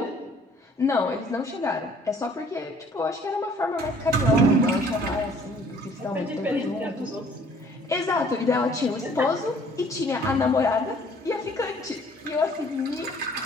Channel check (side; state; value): both; normal; correlation 0.57